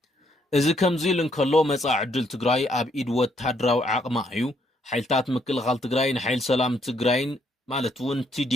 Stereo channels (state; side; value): normal; both; correlation 0.71